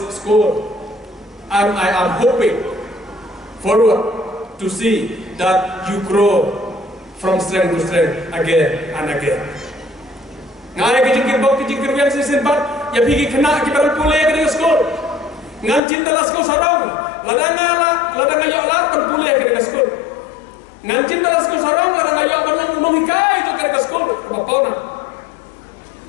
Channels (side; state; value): right; drops out; at 15.8 s